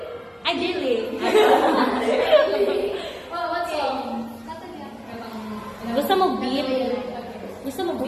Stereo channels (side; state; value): both; identical; correlation 1.00